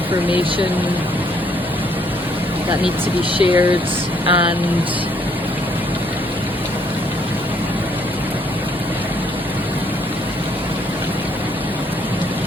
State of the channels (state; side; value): noise; right; hum, 20 dB below the sound